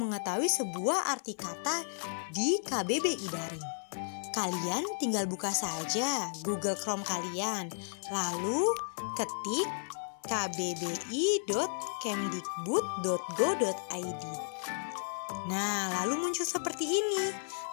sebuah arti kata di KBBI Daring. Kalian tinggal buka saja Google Chrome kalian, lalu ketik kbbi.kemdikbud.go.id. Nah, lalu muncul seperti ini.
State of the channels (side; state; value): right; silent; 55 dB below the other